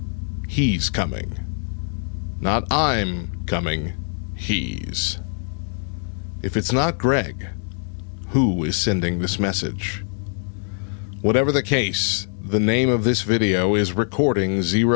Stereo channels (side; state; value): right; silent; 58 dB below the other